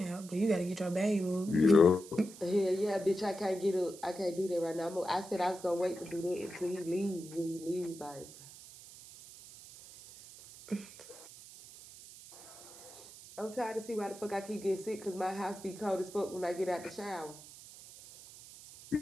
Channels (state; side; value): noise; right; hiss, 17 dB below the sound